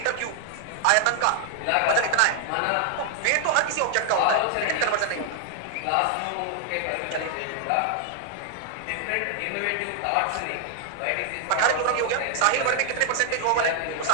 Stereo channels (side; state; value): both; different; correlation 0.00